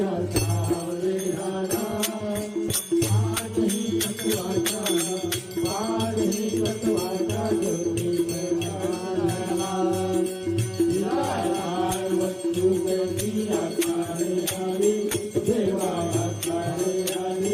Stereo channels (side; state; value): both; identical; correlation 1.00